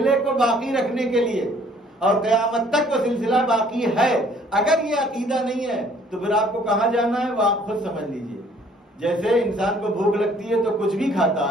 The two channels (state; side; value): normal; both; correlation 0.59